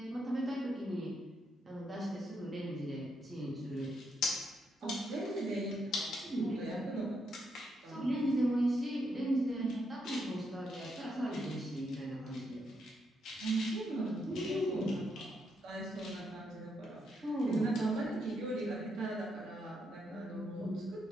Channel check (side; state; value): both; normal; correlation 0.79